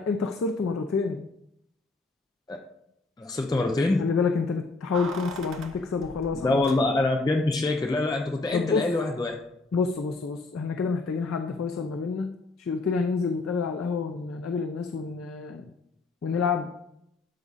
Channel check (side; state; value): right; quieter; 3.4 dB